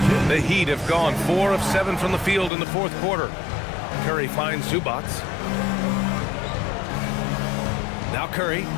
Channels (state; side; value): drops out; right; at 2.5 s